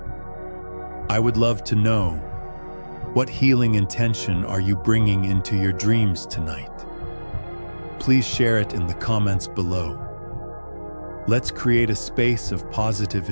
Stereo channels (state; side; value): inverted; both; correlation -1.00